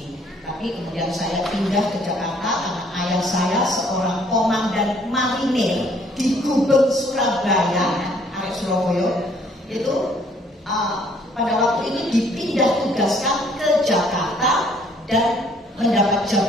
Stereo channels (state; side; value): normal; both; correlation 0.62